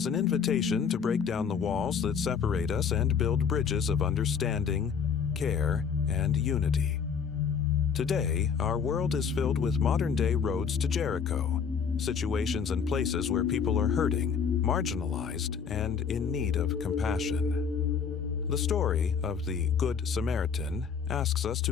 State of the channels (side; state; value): right; quieter; 6.6 dB